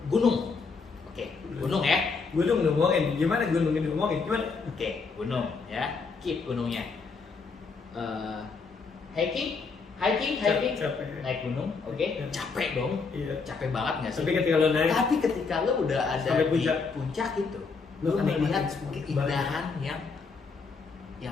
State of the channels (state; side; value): quieter; right; 4.7 dB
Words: gunung, oke, gunung ya. Gunung ngomongin, gimana gunungnya ngomongin, gimana? Oke, gunung ya, keep gunungnya. Hiking, capek. naik gunung, oke, capek dong, iya. Capek banget nggak sih? Tapi ketika lo udah ada sampai di puncak itu, lo melihat keindahan yang